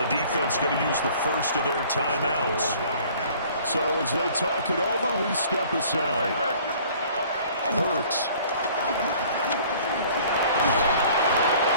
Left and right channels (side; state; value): both; inverted; correlation -0.52